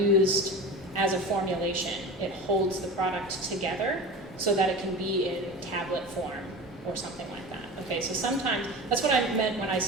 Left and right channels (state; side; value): normal; both; correlation 0.31